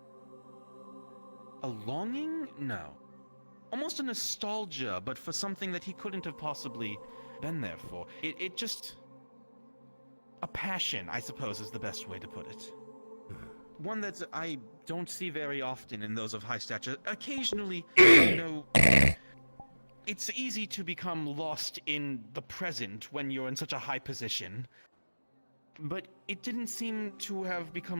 a longing? No. Almost a nostalgia, but for something that he couldn't have possibly been there for. It just, a passion, I suppose, is the best way to put it. One that I don't see very often in those of high stature. Occasionally, it's easy to become lost in the present when you're in such a high position. But it didn't seem to have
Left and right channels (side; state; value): both; inverted; correlation -1.00